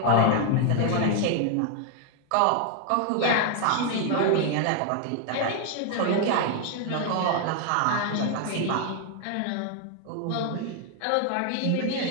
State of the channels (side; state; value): both; different; correlation 0.00